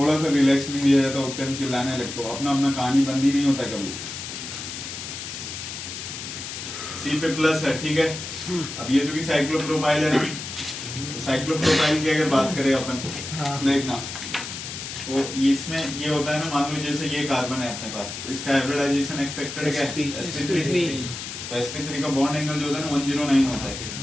सा रिलैक्स नहीं दिया जाता, उतने में चिल्लाने लगते हो। अपना अपना कहानी बंदी नहीं होता कभी। सी पे प्लस है, ठीक है। अब ये जो कि साइक्लोप्रोपाइल है ना, साइक्लोप्रोपाइल की अगर बात करें अपन, देखना तो इसमें ये होता है ना, मान लो जैसे ये कार्बन है अपने पास, तो इसका हाइब्रिडाइजेशन एक्सपेक्टेड क्या है? sp3। तो sp3 का बॉन्ड एंगल जो होता है ना 109 होता है,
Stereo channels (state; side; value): noise; left; hiss, 8 dB below the sound